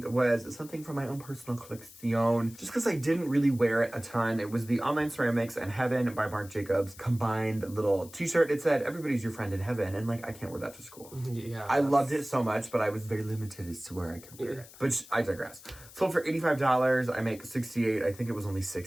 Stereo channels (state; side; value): noise; left; hiss, 19 dB below the sound